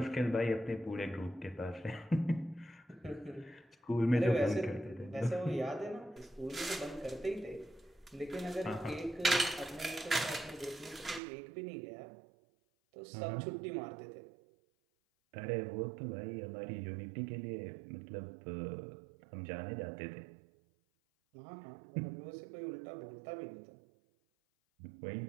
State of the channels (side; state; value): left; drops out; at 11.2 s